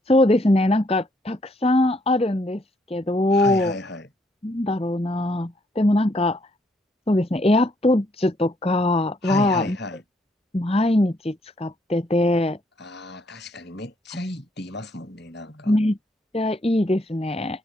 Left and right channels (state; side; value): normal; both; correlation 0.70